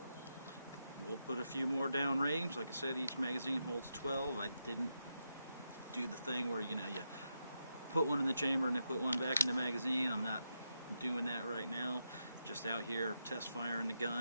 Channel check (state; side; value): inverted; both; correlation -0.85